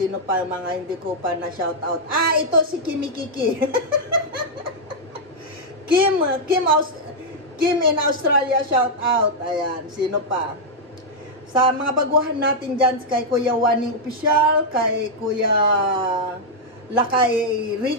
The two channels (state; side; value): normal; both; correlation -0.04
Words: pa mga hindi ko pa na shout out? Ito si Kimi Kiki. Kim in Australia, shout out. Ayan, sino pa? Sa mga baguhan natin dyan, kay Kuya Waning Official, kay Kuya Lakay